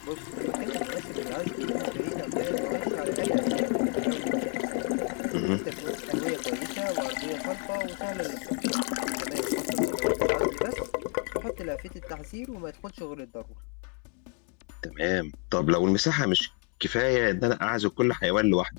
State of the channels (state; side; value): quieter; right; 36.3 dB